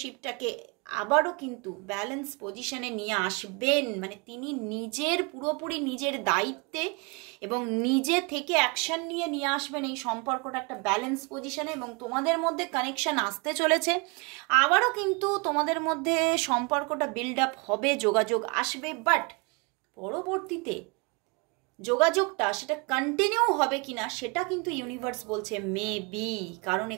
আবারও কিন্তু ব্যালেন্স পজিশনে নিয়ে আসবেন। মানে তিনি পুরোপুরি নিজের দায়িত্বে এবং নিজে থেকে অ্যাকশন নিয়ে আসবেন এই সম্পর্কটা একটা ব্যালেন্স পজিশনে, এবং তোমাদের মধ্যে কানেকশন আসতে চলেছে। আবারও কিন্তু তোমাদের মধ্যে সম্পর্কটা বিল্ড আপ হবে, যোগাযোগ আসবে, বাট পরবর্তীতে যোগাযোগটা সেটা কন্টিনিউ হবে কিনা সেটা কিন্তু ইউনিভার্স বলছে মেবি। কারণ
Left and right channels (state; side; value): quieter; left; 30.7 dB